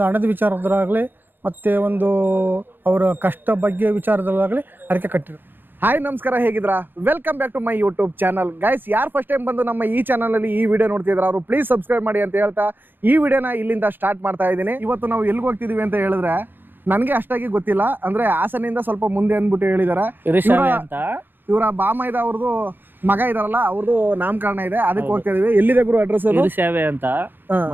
ಹಣದ ವಿಚಾರದರಾಗಲಿ ಮತ್ತು ಒಂದು ಅವರ ಕಷ್ಟ ಬಗ್ಗೆ ವಿಚಾರದಲ್ಲಾಗಲಿ ಅರಿಕೆ ಕಟ್ಟಿದ್ರು. ಹಾಯ್ ನಮಸ್ಕಾರ, ಹೇಗಿದ್ರಾ? Welcome back to my YouTube channel. Guys, ಯಾರು ಫಸ್ಟ್ ಟೈಮ್ ಬಂದು ನಮ್ಮ ಈ ಚಾನಲಲ್ಲಿ ಈ ವಿಡಿಯೋ ನೋಡ್ತಿದ್ರು ಅವರು ಪ್ಲೀಸ್ ಸಬ್ಸ್ಕ್ರೈಬ್ ಮಾಡಿ ಅಂತ ಹೇಳ್ತಾ ಈ ವಿಡಿಯೋನ ಇಲ್ಲಿಂದ ಸ್ಟಾರ್ಟ್ ಮಾಡ್ತಾ ಇದ್ದೀನಿ. ಇವತ್ತು ನಾವು ಎಲ್ಲಿಗೆ ಹೋಗ್ತಿದ್ದೀವಿ ಅಂತ ಹೇಳಿದ್ರೆ ನನಗೆ ಅಷ್ಟಾಗಿ ಗೊತ್ತಿಲ್ಲ, ಅಂದರೆ ಹಾಸನಿಂದ ಸ್ವಲ್ಪ ಮುಂದೆ ಅಂದ್ಬಿಟ್ಟು ಹೇಳಿದ್ದಾರೆ. ಇವರ ಬಾಮೈದ ಅವ್ರದ್ದು ಮಗ ಇದಾರಲ್ಲ, ಅವ್ರದ್ದು ನಾಮಕರಣ ಇದೆ, ಅದಕ್ಕೆ ಹೋಗ್ತಾ ಇದೀವಿ. ಎಲ್ಲಿದೆ ಗುರು ಅಡ್ರೆಸ್? ಸೇವೆ ಅಂತ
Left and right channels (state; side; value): late; left; 0.096 ms